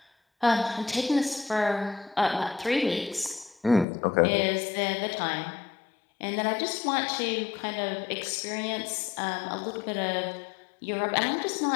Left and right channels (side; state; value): right; drops out; at 3.9 s